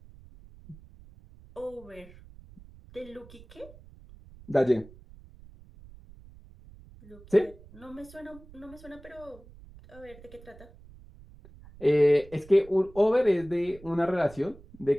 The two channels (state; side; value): noise; right; rumble, 21 dB below the sound